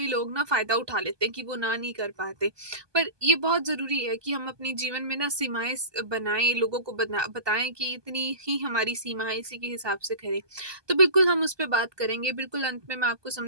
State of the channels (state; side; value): late; left; 1.2 ms